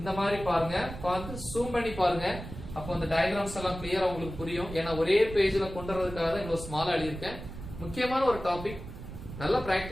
இந்த மாதிரி பாருங்க பார்த்து ஜூம் பண்ணி பாருங்க அப்போ அந்த டயகிராம்ஸ் எல்லாம் கிளியரா உங்களுக்கு புரியும் ஏன்னா ஒரே பேஜ்ல கொண்டு வரதுக்காக தான் இவ்வளவு ஸ்மாலா எழுதியிருக்கேன் முக்கியமான ஒரு டாபிக் நல்லா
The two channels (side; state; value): right; noise; rumble, 11 dB below the sound